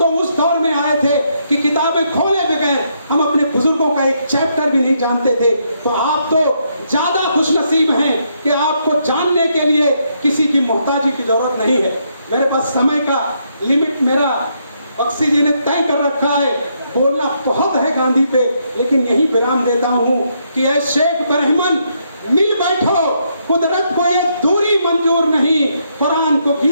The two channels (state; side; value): inverted; both; correlation -0.76